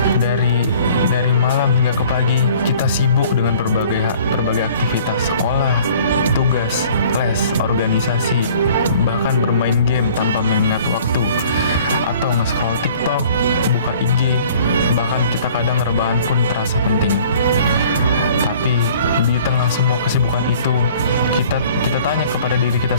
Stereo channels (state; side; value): inverted; both; correlation -0.52